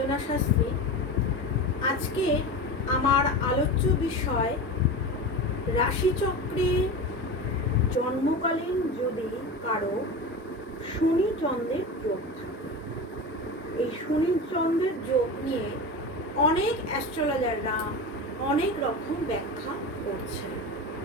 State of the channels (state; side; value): normal; both; correlation 0.26